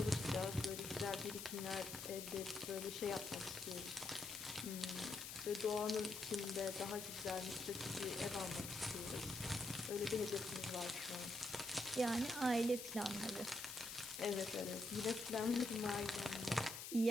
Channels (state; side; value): noise; left; hiss, 7 dB below the sound